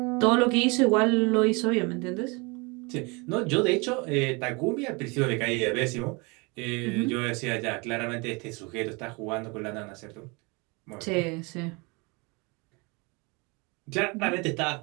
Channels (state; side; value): quieter; left; 28.4 dB